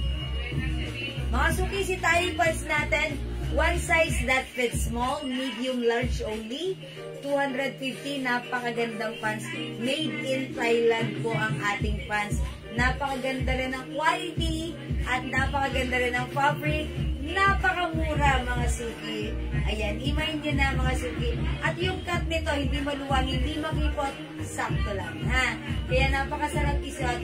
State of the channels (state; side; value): identical; both; correlation 1.00